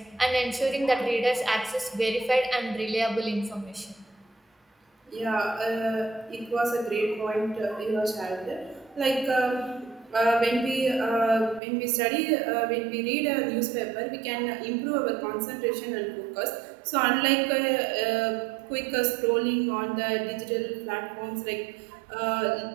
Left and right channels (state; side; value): drops out; left; at 11.6 s